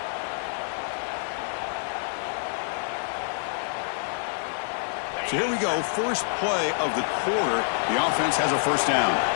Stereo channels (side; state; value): right; silent; 55 dB below the other